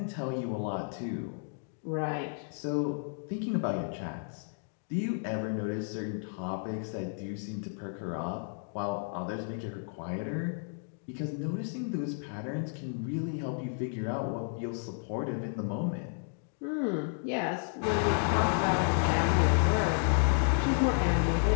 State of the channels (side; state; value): right; silent; 56 dB below the other